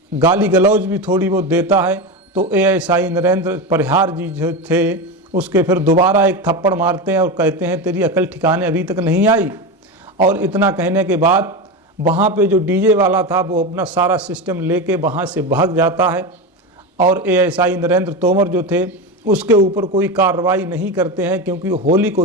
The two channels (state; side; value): normal; both; correlation 0.19